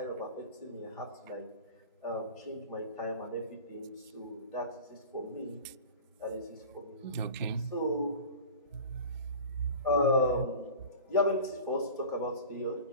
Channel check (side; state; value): both; inverted; correlation -0.36